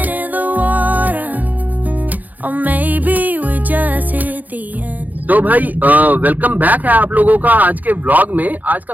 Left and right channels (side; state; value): left; late; 0.081 ms